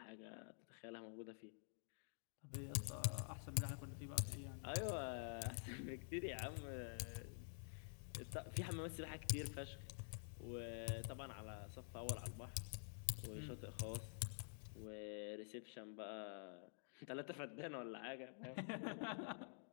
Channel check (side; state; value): right; silent; digital silence